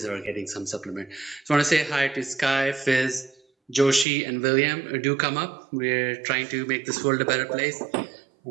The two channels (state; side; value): drops out; left; at 4.0 s